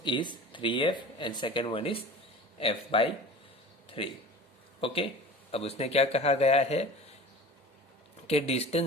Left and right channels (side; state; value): both; normal; correlation 0.38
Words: is 3F and second one is F by 3. Okay, अब उसने क्या कहा गया है कि